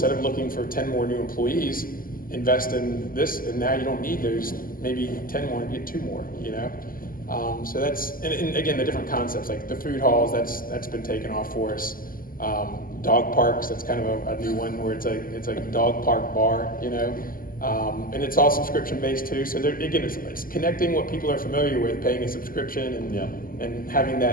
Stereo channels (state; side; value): late; right; 0.41 ms